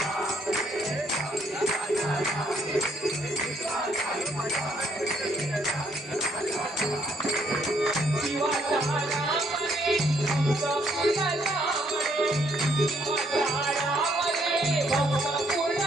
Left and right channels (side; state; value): both; normal; correlation 0.69